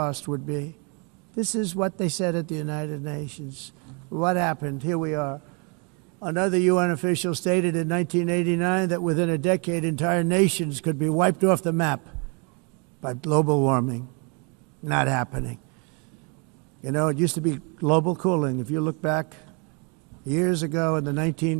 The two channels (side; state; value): left; quieter; 34.2 dB